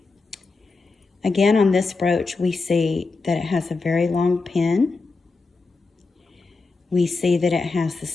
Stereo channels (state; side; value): quieter; right; 3.9 dB